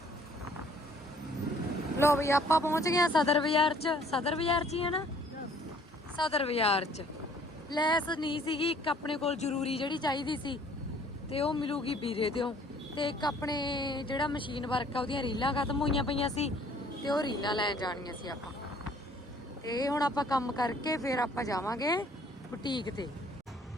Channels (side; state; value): both; normal; correlation 0.58